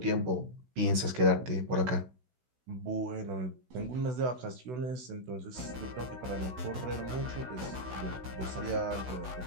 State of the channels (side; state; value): left; late; 16 ms